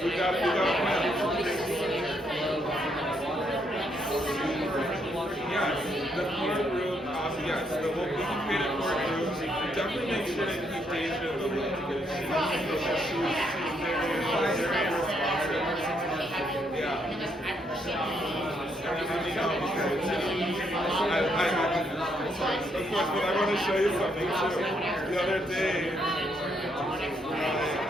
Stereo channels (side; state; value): both; normal; correlation 0.74